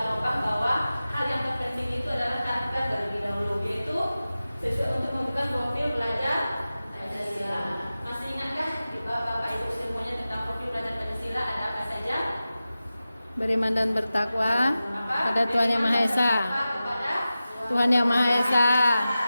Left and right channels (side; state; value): both; inverted; correlation -0.95